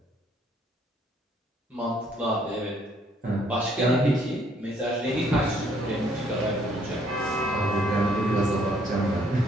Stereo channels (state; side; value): normal; both; correlation 0.66